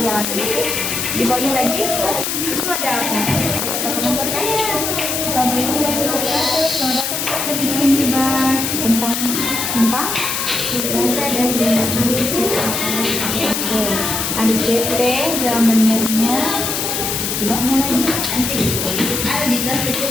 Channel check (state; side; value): noise; left; hiss, 1 dB below the sound